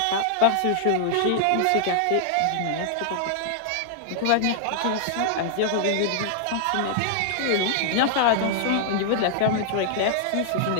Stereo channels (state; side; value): different; both; correlation -0.01